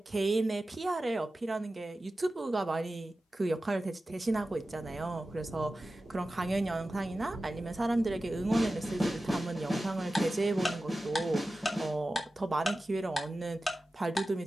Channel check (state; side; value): normal; both; correlation 0.95